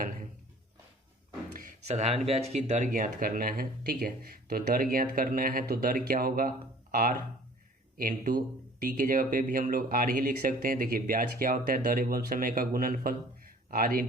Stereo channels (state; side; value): normal; both; correlation 0.50